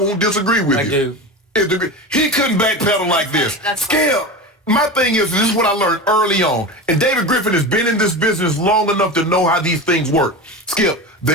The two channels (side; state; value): both; normal; correlation 0.26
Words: disagree with you. I do. He couldn't backpedal like this. Skip, my thing is, this is what I learned early on. And David Griffin has been in this business long enough to know how these things work. Skip,